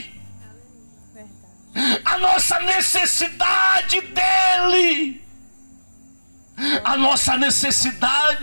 a nossa necessidade dEle. A nossa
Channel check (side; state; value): both; inverted; correlation -1.00